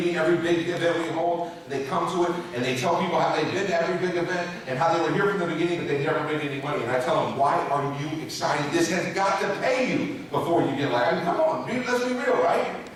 every big event we hold. They come to it and they tell people how they've been to every big event and how they were here from the beginning, but they never made any money. And I tell them, why are you excited? This has got to pay you before you get like, I mean, come on, dude, let's be real, right?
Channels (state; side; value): identical; both; correlation 1.00